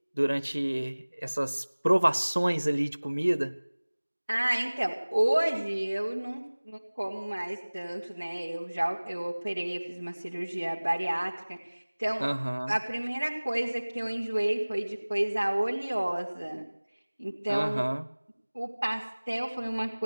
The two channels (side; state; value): both; inverted; correlation -1.00